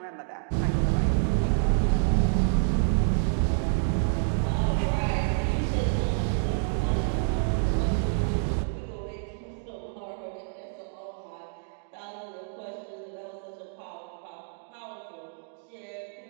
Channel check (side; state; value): left; silent; digital silence